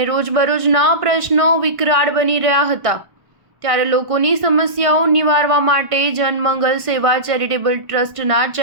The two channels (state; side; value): late; left; 1.5 ms